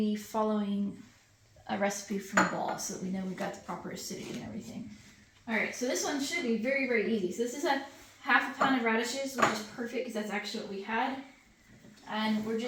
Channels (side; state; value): both; identical; correlation 1.00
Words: following a recipe from the ball so that we know we've got the proper acidity and everything. All right, so this one should be very, very easy. So this is a half a pound of radishes, which is perfect because that's actually what we had. And we're